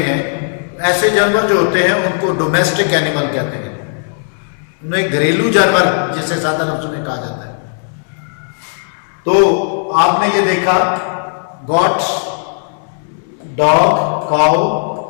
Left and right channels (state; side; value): silent; right; digital silence